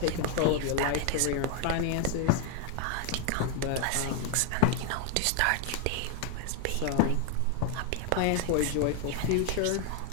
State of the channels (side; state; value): both; different; correlation 0.01